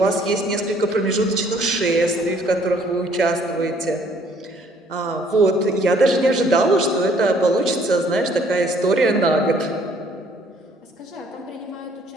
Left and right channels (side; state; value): both; normal; correlation 0.61